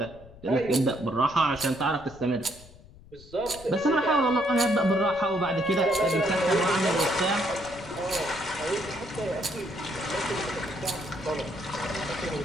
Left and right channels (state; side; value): noise; left; rumble, 21 dB below the sound